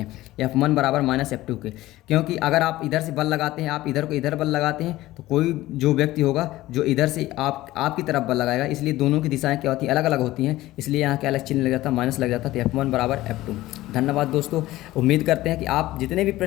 F1 बराबर माइनस F2 के, क्योंकि अगर आप इधर से बल लगाते हैं, आप इधर को इधर बल लगाते हैं तो कोई जो व्यक्ति होगा जो इधर से आपकी तरफ बल लगाएगा, इसलिए दोनों की दिशाएँ क्या होती हैं? अलग अलग होती हैं, इसलिए यहाँ क्या अलग चिन्ह लग जाता है? माइनस लग जाता है। तो F1 बराबर F2। धन्यवाद दोस्तों। उम्मीद करते हैं कि आप जितने भी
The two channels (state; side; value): quieter; right; 16.7 dB